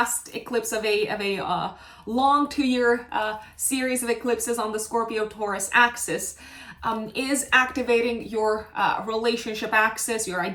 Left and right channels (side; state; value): both; identical; correlation 1.00